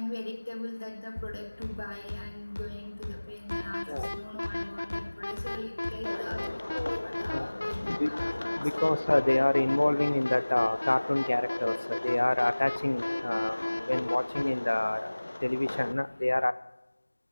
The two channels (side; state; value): both; inverted; correlation -1.00